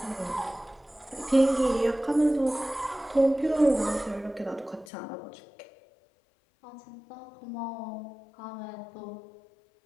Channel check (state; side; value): drops out; right; at 4.9 s